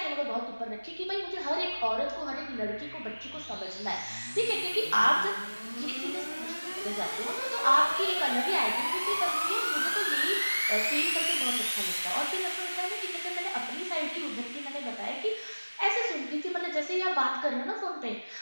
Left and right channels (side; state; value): both; inverted; correlation -1.00